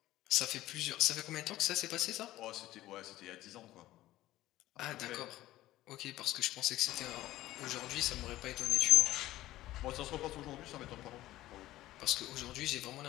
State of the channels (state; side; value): quieter; right; 15.7 dB